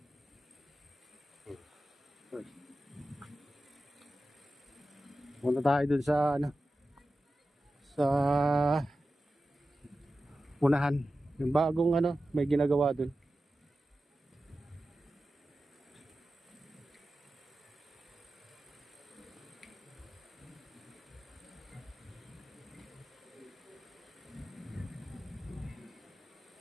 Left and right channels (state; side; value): normal; both; correlation 0.93